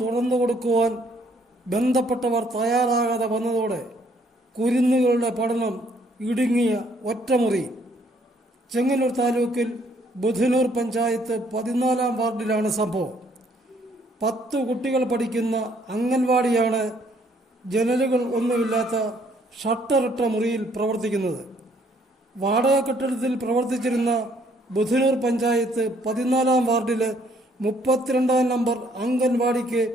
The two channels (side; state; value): both; normal; correlation 0.65